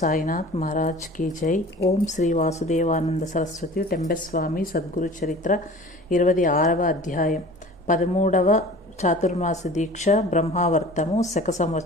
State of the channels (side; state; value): both; normal; correlation 0.42